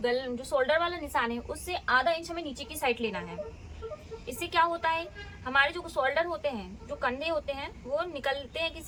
शोल्डर वाला निशान है उससे आधा इंच हमें नीचे की साइड लेना है। इससे क्या होता है हमारे जो शोल्डर होते हैं जो कंधे होते हैं वो निकलते हैं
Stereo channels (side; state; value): both; identical; correlation 1.00